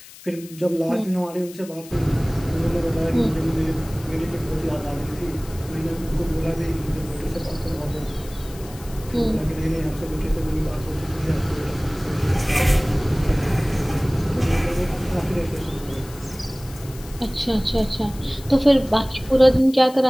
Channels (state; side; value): noise; left; hiss, 19 dB below the sound